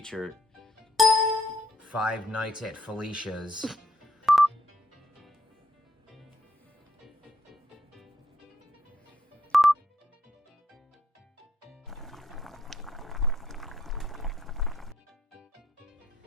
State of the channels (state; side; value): normal; both; correlation 0.73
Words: 5 Nights at Felicia's.